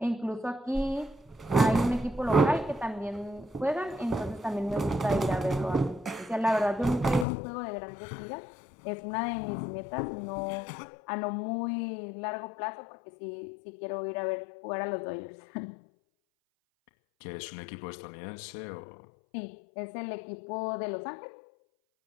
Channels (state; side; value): drops out; right; at 7.2 s